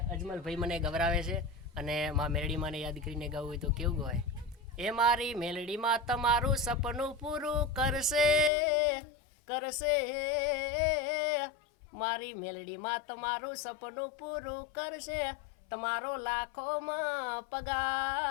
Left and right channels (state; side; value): drops out; right; at 8.5 s